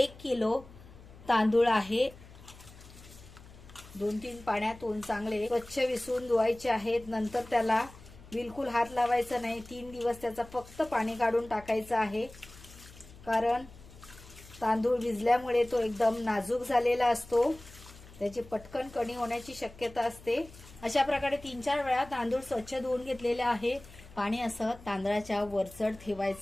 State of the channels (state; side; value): noise; left; hum, 20 dB below the sound